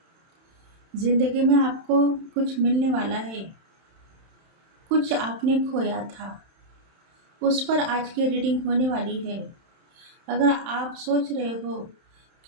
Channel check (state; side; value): late; left; 31 ms